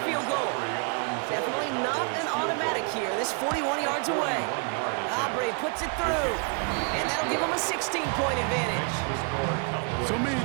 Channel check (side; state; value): left; quieter; 37.5 dB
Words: goal. Definitely not an automatic here. This 41 yards away. Aubrey puts it through. And that'll give him a 16-point advantage. So many